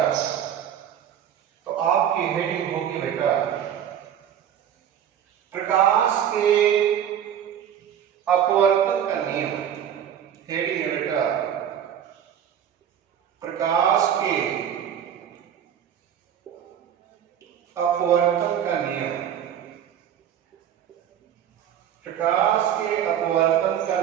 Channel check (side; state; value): left; quieter; 9.6 dB